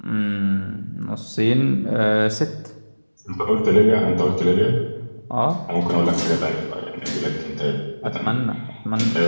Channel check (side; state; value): both; inverted; correlation -1.00